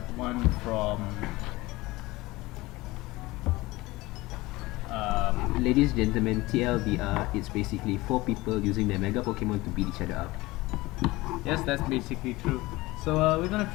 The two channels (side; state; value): right; quieter; 20.3 dB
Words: one from Ladies and gentlemen, TLDR, it's basically 4 people using their Mega Pokemon to beat each other up. yes, that's basically true. So we're gonna